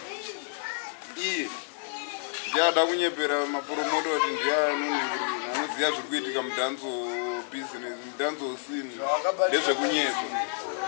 iye ndiada kunyepera mapromota kuti ndiye anonhingirira anoziva zviri kuitika mudhanso business mudhanso scene ndezvekunyepa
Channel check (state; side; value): silent; right; digital silence